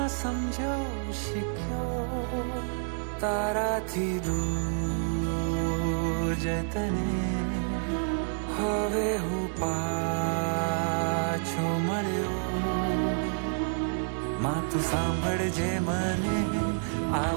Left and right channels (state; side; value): silent; left; 59 dB below the other